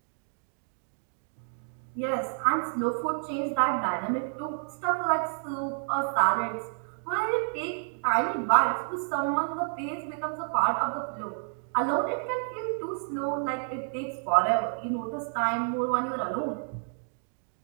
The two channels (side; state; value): left; silent; digital silence